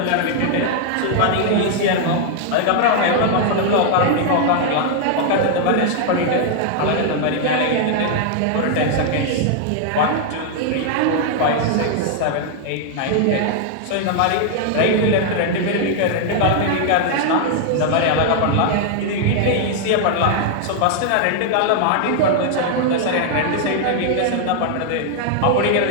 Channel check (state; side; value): different; both; correlation 0.00